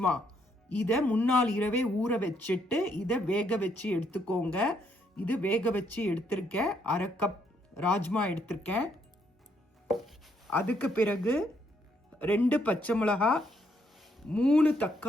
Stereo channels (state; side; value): normal; both; correlation 0.73